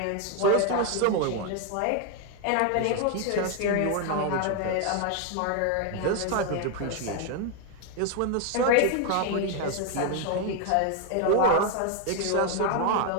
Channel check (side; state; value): both; different; correlation 0.01